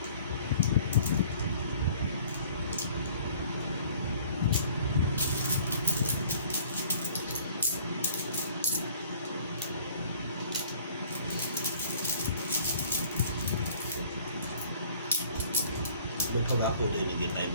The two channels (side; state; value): both; inverted; correlation -0.53